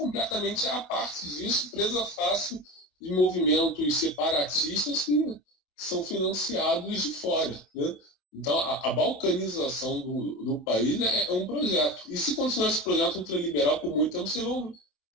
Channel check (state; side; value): late; right; 27 ms